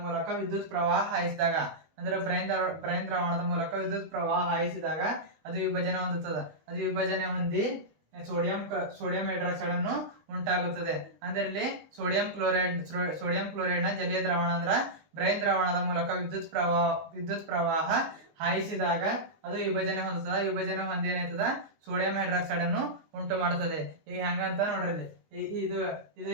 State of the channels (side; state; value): left; late; 19 ms